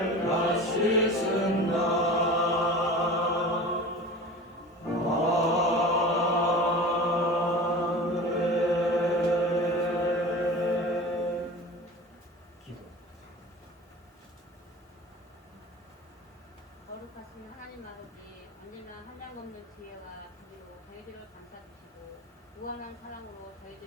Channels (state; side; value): normal; both; correlation 0.35